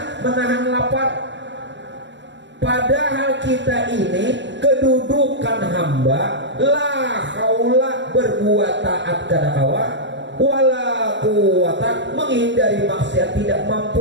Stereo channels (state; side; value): late; left; 0.53 ms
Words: menahan lapar. Padahal kita ini kedudukan hamba, la haula, berbuat taat kada kawa, wala quwata, menghindari maksiat tidak